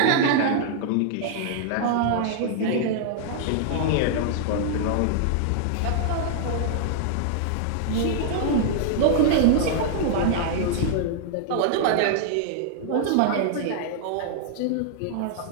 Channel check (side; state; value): both; different; correlation -0.01